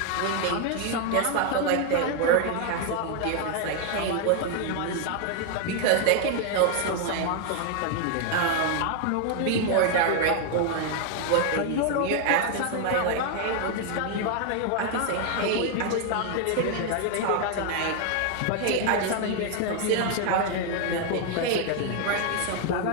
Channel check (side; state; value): both; different; correlation 0.00